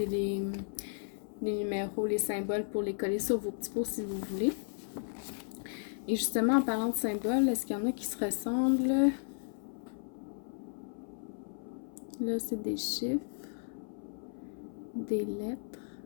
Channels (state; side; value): silent; right; 55 dB below the other